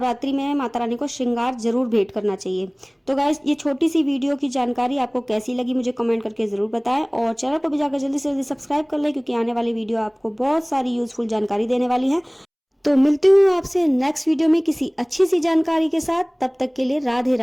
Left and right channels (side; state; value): both; identical; correlation 1.00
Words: में माता रानी को श्रृंगार जरूर भेंट करना चाहिए। तो गाइस ये छोटी सी वीडियो की जानकारी आपको कैसी लगी मुझे कमेंट करके जरूर बताएं, और चैनल को भी जाकर जल्दी से जल्दी सब्सक्राइब कर लें, क्योंकि आने वाली वीडियो आपको बहुत सारी यूजफुल जानकारी देने वाली है। तो मिलती हूँ आपसे नेक्स्ट वीडियो में किसी अच्छी सी जानकारी के साथ। तब तक के लिए राधे